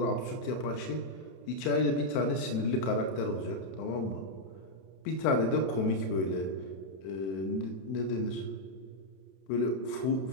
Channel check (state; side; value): late; right; 31 ms